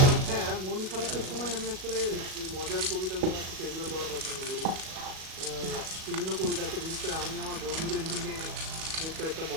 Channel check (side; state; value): left; late; 37 ms